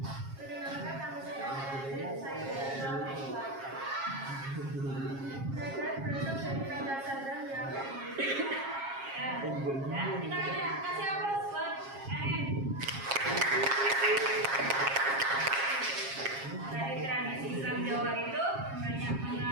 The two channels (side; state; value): left; late; 7.4 ms